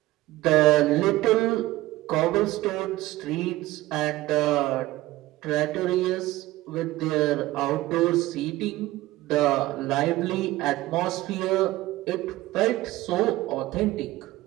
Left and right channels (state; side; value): quieter; left; 17.6 dB